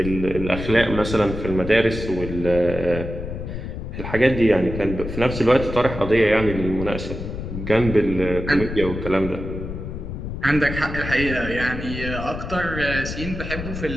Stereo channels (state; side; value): noise; left; rumble, 7 dB below the sound